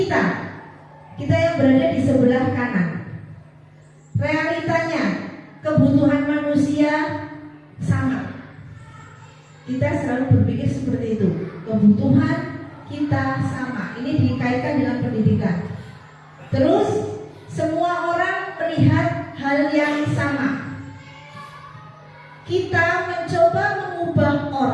yang berada di sebelah kanan. Realitanya, kebutuhan manusia sama. Kita selalu berpikir seperti itu. Kebutuhan kita sama. Ini dikaitkan dengan pendidikan. Terus semua orang melihat hal yang sama. Kita mencoba mengubah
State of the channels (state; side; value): identical; both; correlation 1.00